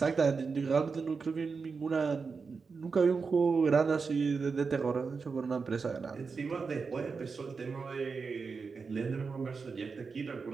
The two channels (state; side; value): quieter; left; 5.0 dB